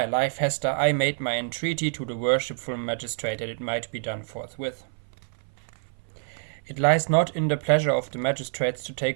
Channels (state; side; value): silent; left; 59 dB below the other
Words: life, Hester, I made my entreaty to the worshipful magistrate that it might be done forthwith." "It lies not in the pleasure of the magistrates to